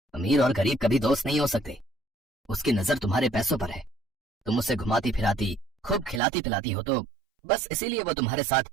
अमीर और गरीब कभी दोस्त नहीं हो सकते। उसकी नजर तुम्हारे पैसों पर है, तुम उसे घुमाती फिराती, खूब खिलाती पिलाती हो, तो बस इसीलिए वो तुम्हारे साथ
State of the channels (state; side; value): drops out; left; at 6.2 s